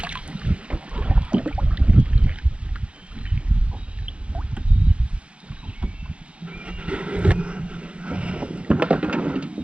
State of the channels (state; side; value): late; left; 0.060 ms